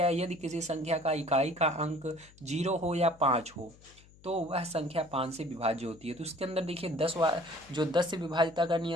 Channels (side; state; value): left; noise; hum, 25 dB below the sound